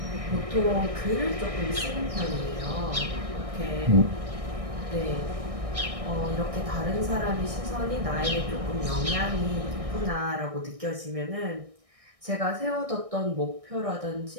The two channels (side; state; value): left; late; 1.6 ms